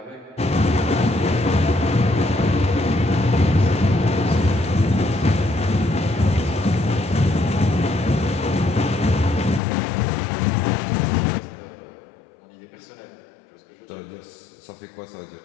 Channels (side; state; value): right; drops out; at 9.6 s